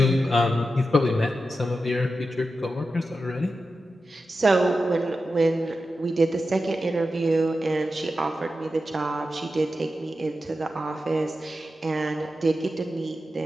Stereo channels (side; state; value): both; normal; correlation 0.91